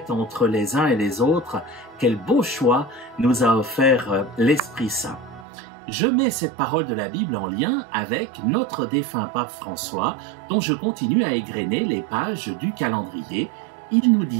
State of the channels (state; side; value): drops out; left; at 5.5 s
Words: entre les uns et les autres. Quel beau choix nous a offert l'Esprit Saint. Je mets cette parole de la Bible en lien avec notre défunt pape François, dont je continue à égrener les pages du calendrier. Il nous